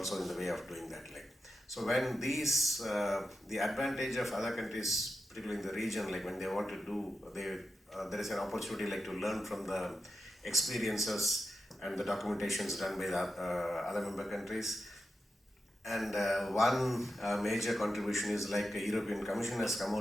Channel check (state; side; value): normal; both; correlation 0.89